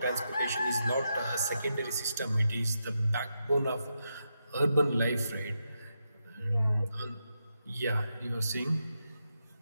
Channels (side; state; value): both; inverted; correlation -0.85